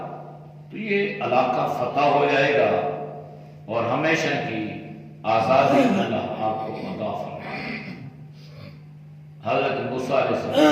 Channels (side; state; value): both; identical; correlation 1.00